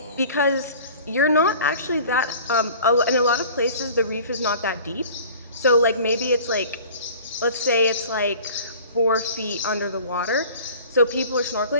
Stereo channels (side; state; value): both; inverted; correlation -0.44